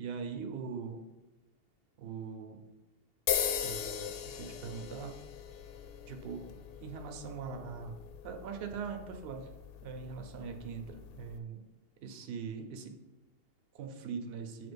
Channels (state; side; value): late; right; 2.8 ms